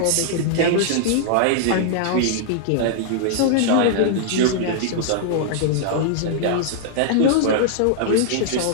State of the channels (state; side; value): different; both; correlation -0.01